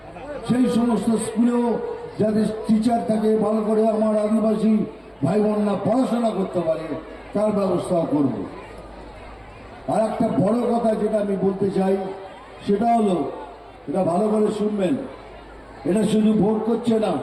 সেই সমস্ত স্কুলেও যাদের টিচার থাকে, ভালো করে আমার আদিবাসী ভাই বোনরা পড়াশোনা করতে পারে, তার ব্যবস্থাও করব। আর একটা বড় কথা যেটা আমি বলতে চাই, সেটা হলো, এটা ভালো করে শুনবেন, এটা শুধু ভোট করছে না,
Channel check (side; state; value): both; identical; correlation 1.00